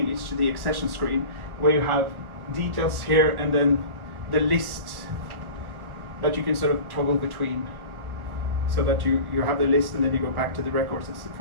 It's the accession screen, where you have details here and then the list that you can sort of toggle between, so that you have the list and then you go back to the records and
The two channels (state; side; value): late; left; 1.1 ms